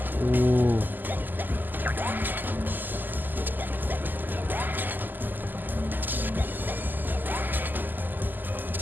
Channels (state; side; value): late; left; 0.088 ms